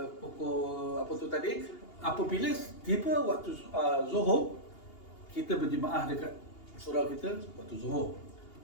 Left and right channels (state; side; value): late; right; 2.8 ms